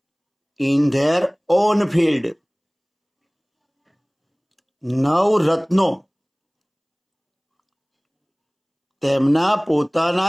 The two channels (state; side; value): identical; both; correlation 1.00